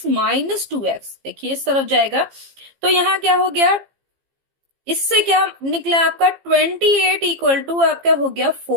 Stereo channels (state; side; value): late; left; 15 ms